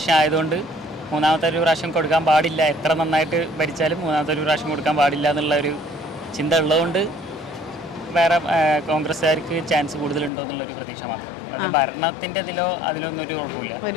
ആയതുകൊണ്ട് 3ാമത്തെ ഒരു പ്രാവശ്യം കൊടുക്കാൻ പാടില്ല. എത്ര നന്നായിട്ട് ഭരിച്ചാലും 3ാമത്തെ ഒരു പ്രാവശ്യം കൊടുക്കാൻ പാടില്ല എന്നുള്ള ഒരു ചിന്ത ഉള്ളതുകൊണ്ട് വേറെ കോൺഗ്രസ്സുകാർക്ക് ചാൻസ് കൂടുതലുണ്ടോ എന്നുള്ളൊരു പ്രതീക്ഷ മാത്രം. അത് ഭരണത്തിൻ്റെ അതിലൊന്നും ഒരു കുഴപ്പമില്ല.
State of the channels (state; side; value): drops out; right; at 10.3 s